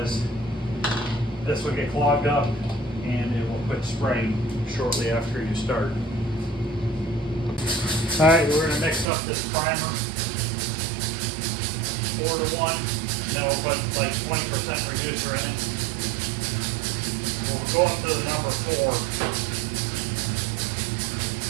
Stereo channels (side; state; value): left; drops out; at 9.1 s